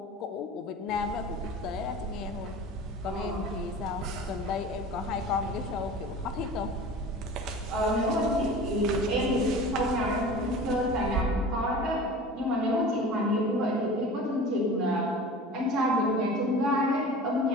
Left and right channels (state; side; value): normal; both; correlation 0.38